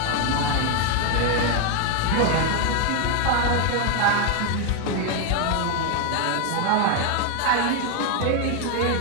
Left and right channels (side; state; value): both; different; correlation 0.01